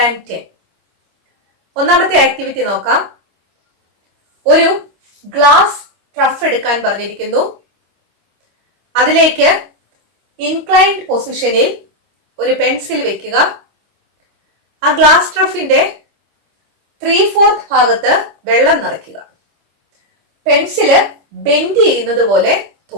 ഒന്നാമത്തെ ആക്ടിവിറ്റി നോക്കാം. ഒരു ഗ്ലാസ് ട്രഫ് എടുക്കാൻ പറഞ്ഞിരിക്കുന്നു. അതിലേക്ക് ഇൻക്ലൈൻഡ് പൊസിഷനിൽ ഒരു പെൻസിൽ വെക്കുക. ആ ഗ്ലാസ് ട്രഫിന്റെ 3/4 ഭാഗത്ത് വെള്ളം നിറയ്ക്കുക. പെൻസില് ബെൻഡ് ചെയ്യുന്നത് പോലെ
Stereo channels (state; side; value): late; left; 25 ms